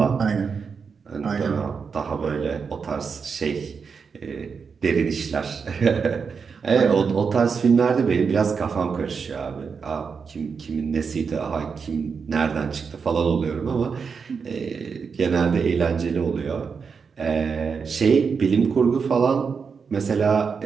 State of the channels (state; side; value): quieter; left; 5.7 dB